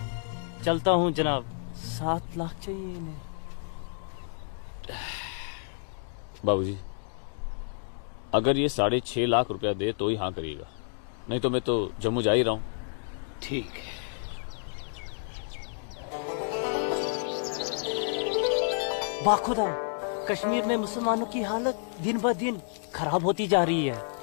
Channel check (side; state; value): right; silent; digital silence